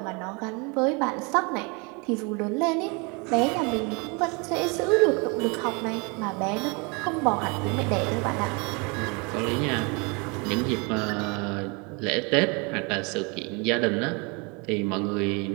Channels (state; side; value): quieter; left; 30.8 dB